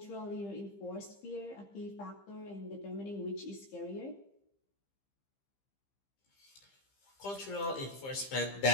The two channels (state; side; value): late; right; 15 ms